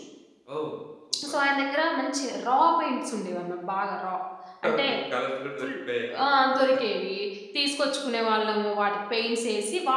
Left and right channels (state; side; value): identical; both; correlation 1.00